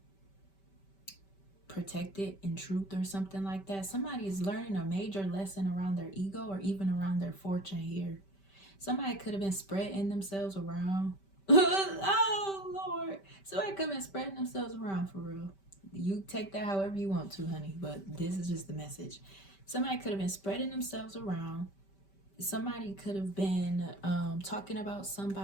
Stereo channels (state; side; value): late; right; 5.1 ms